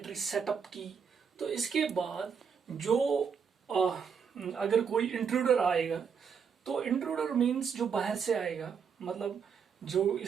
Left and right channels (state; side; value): quieter; left; 6.6 dB